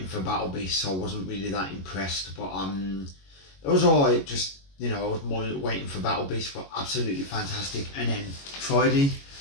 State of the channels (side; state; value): right; late; 21 ms